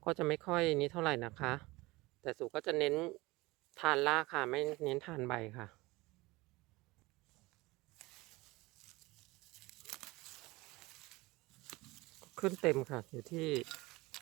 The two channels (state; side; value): quieter; left; 21.7 dB